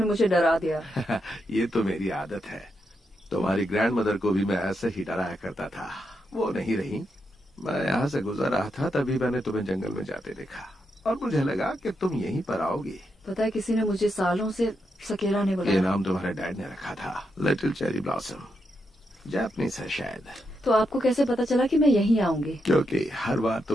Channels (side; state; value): both; normal; correlation 0.83